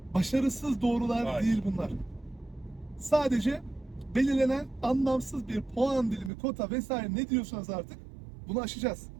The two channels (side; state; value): left; drops out; at 6.3 s